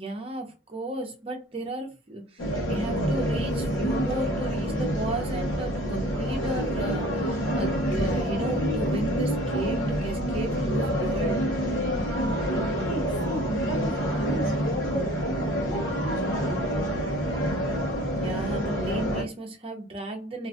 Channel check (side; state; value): both; normal; correlation 0.48